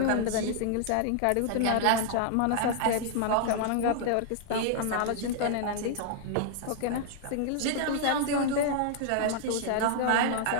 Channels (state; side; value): different; both; correlation -0.01